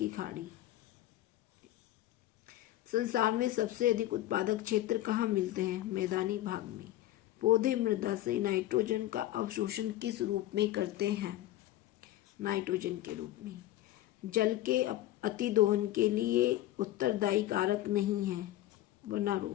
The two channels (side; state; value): right; quieter; 14.6 dB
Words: खाड़ी। संसार में सबसे अधिक उत्पादक क्षेत्र कहाँ मिलते हैं? मैदानी भाग में। पौधे मृदा से नाइट्रोजन का अवशोषण किस रूप में करते हैं? नाइट्रोजन के रूप में। जल के अतिदोहन के लिए उत्तरदायी कारक नहीं है